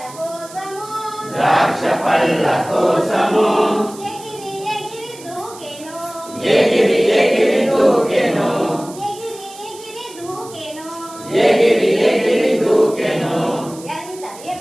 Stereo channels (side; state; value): right; noise; hiss, 18 dB below the sound